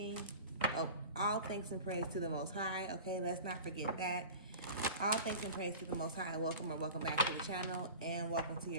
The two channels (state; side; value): inverted; both; correlation -0.36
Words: Oh, all thanks and praise to the Most High. Okay, let's not forget that. All thanks and praise to the Most High. Welcome or welcome back to the channel, and welcome to